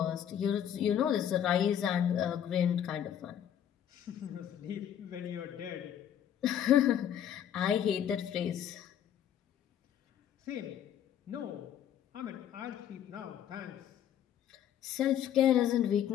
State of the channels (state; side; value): quieter; right; 9.9 dB